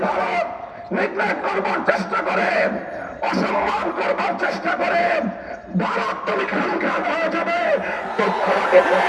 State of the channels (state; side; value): identical; both; correlation 1.00